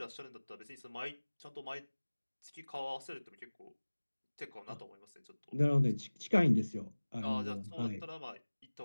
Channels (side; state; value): both; inverted; correlation -1.00